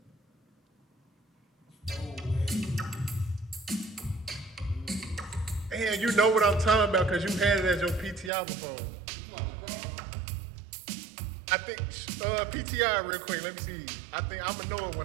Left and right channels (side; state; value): left; drops out; at 8.3 s